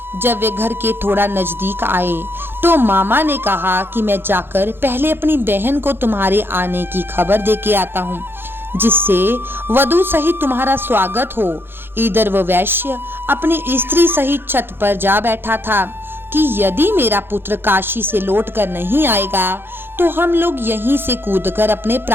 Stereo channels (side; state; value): left; late; 0.10 ms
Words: जब वे घर के थोड़ा नजदीक आए तो मामा ने कहा कि मैं जाकर पहले अपनी बहन को तुम्हारे आने की खबर दे के आता हूँ, जिससे वधू सहित तुम्हारा स्वागत हो। इधर वह वैश्य अपनी स्त्री सहित छत पर जा बैठा था कि यदि मेरा पुत्र काशी से लौट कर नहीं आएगा तो हम लोग यहीं से कूदकर अपने